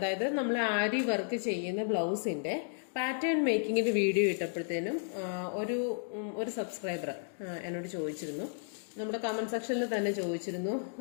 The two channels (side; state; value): right; silent; digital silence